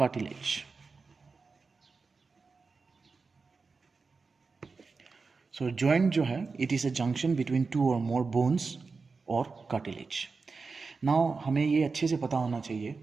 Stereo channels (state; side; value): quieter; left; 4.4 dB